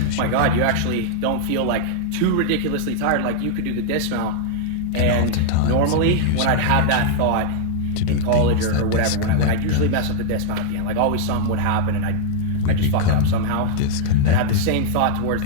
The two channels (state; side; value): different; both; correlation -0.01